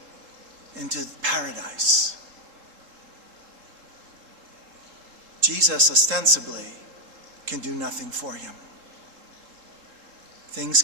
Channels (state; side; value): late; left; 3.8 ms